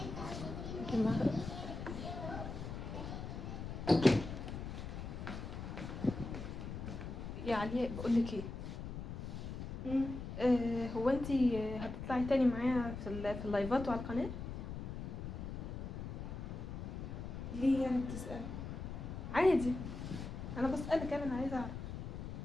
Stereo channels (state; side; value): noise; left; rumble, 6 dB below the sound